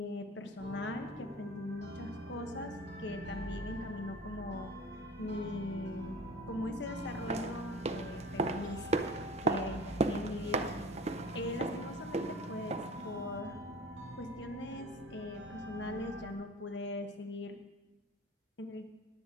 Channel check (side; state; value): both; normal; correlation 0.40